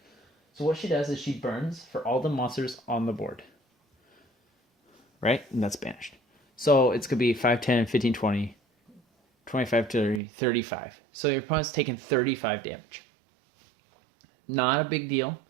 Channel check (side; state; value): left; drops out; at 10.2 s